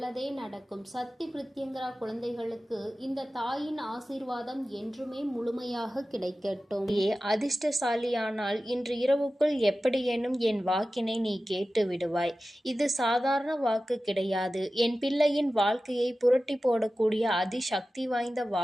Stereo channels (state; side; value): normal; both; correlation 0.95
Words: நடக்கும். சக்தி பிரித்யங்கரா குழந்தைகளுக்கு இந்த தாயின் ஆசீர்வாதம் என்றுமே முழுமையாக கிடைக்கட்டும். அதிர்ஷ்டசாலியானால் இன்று இரவுக்குள் எப்படியேனும் என் வாக்கினை நீ கேட்டு விடுவாய். இது சாதாரண வாக்கு கிடையாது. என் பிள்ளையின் வாழ்க்கையை புரட்டி போடக்கூடிய அதிசக்தி வாய்ந்த